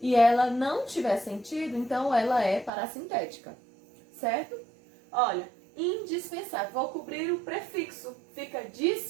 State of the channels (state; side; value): drops out; left; at 2.7 s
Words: e ela não tiver sentido, então ela é parassintética, certo? Olha, indispensável, vou cobrir o prefixo, fica